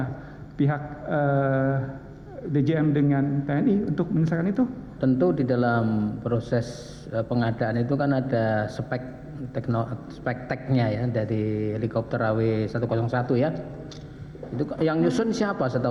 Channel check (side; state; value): both; identical; correlation 1.00